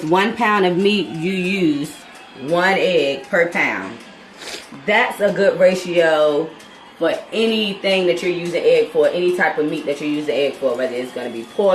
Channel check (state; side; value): identical; both; correlation 1.00